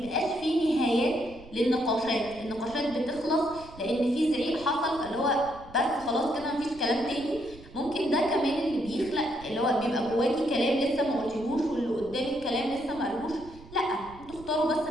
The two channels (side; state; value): right; noise; rumble, 19 dB below the sound